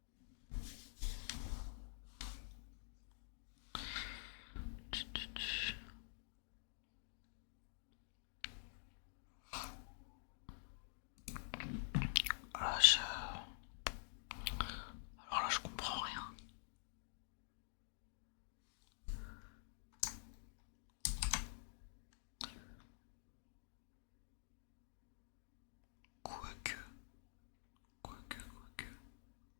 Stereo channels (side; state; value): right; silent; digital silence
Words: Ah, alors là je comprends rien. Quoique... Quoique...